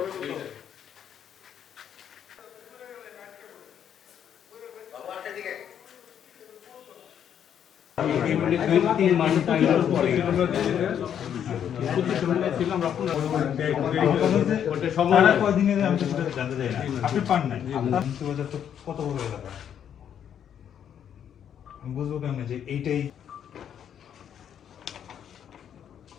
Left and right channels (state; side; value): quieter; right; 9.1 dB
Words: আপনি পান নাই কত বড় এলাকা বুঝবো কেমন যে এইটাই